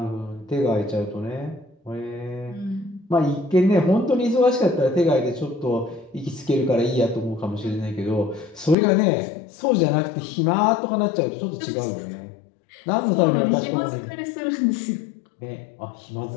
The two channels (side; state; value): right; drops out; at 8.8 s